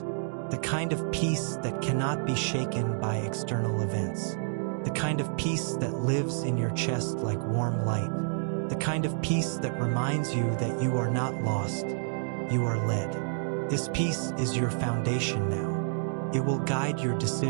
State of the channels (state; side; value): silent; left; digital silence